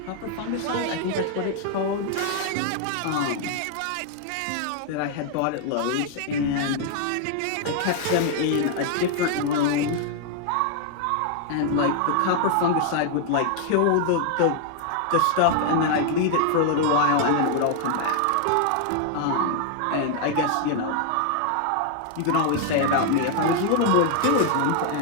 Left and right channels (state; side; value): different; both; correlation 0.00